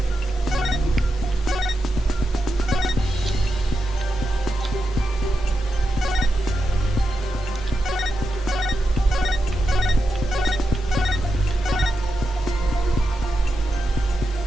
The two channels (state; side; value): normal; both; correlation 0.88